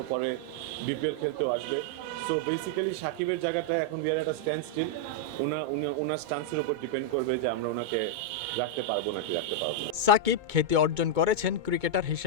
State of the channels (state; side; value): late; left; 2.2 ms